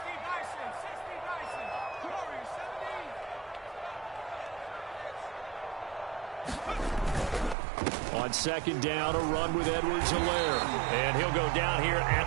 On 2nd down, a run with Edwards-Helaire. And he'll go down here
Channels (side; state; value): left; drops out; at 7.6 s